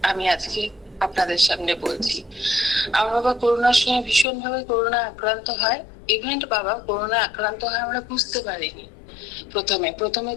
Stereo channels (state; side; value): drops out; right; at 4.2 s